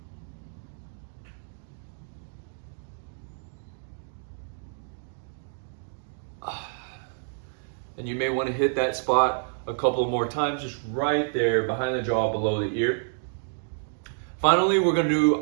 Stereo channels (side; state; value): left; silent; digital silence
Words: And you may want to hit that spot a couple more times, just right there behind the jaw below the ear. Finally, we're going to do